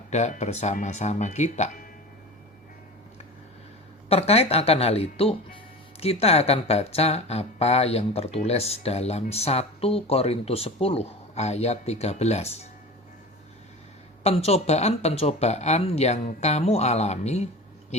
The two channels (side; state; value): both; normal; correlation 0.33